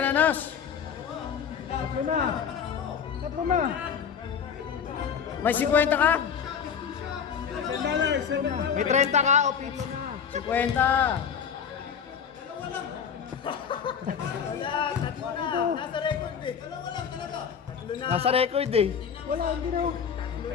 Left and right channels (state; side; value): quieter; right; 7.3 dB